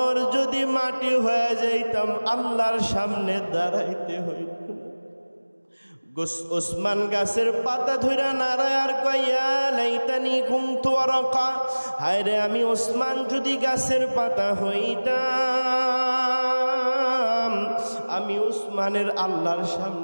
যদি মাটি হয়ে যাইতাম, আল্লাহর সামনে দাঁড়াইতে হইত। ওসমান গাছের পাতা ধইরা নারায় আর কইয়া লাইতানি কুনতু ওয়ারাকা, হায় রে আমি ওসমান যদি গাছের পাতা হইতাম, আমি ওসমানের আল্লাহর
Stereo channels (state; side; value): inverted; both; correlation -1.00